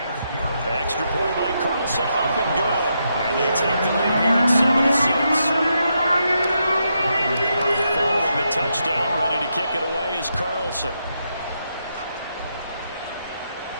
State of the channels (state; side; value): inverted; both; correlation -0.81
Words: Extra point by Carlson, up and good. And they take the lead here at 7-6. Following the touchdown, ready to kick it away is Carlson.